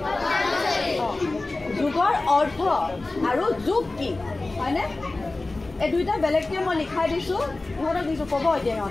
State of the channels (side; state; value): right; quieter; 3.1 dB